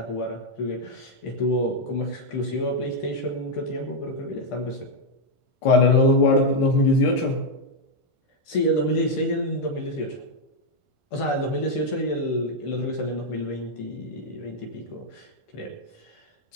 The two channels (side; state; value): right; late; 1.5 ms